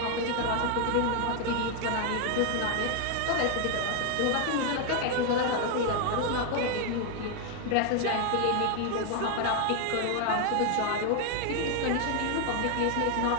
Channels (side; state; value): both; different; correlation 0.00